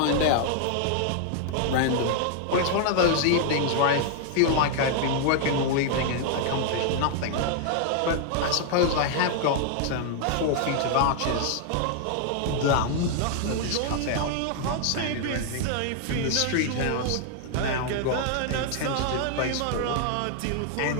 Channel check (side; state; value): both; different; correlation 0.00